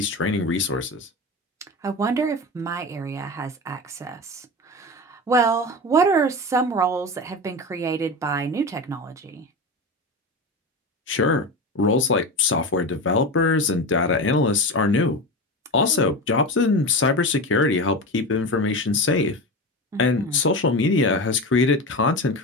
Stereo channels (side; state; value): both; normal; correlation 0.24